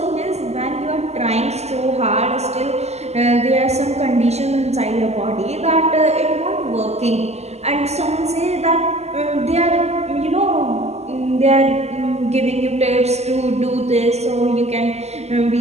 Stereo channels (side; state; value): left; late; 0.31 ms